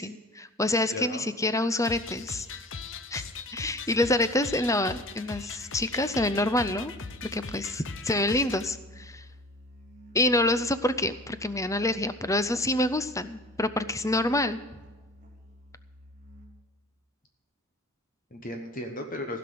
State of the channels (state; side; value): normal; both; correlation 0.42